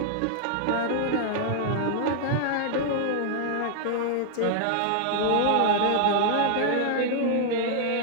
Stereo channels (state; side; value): different; both; correlation -0.01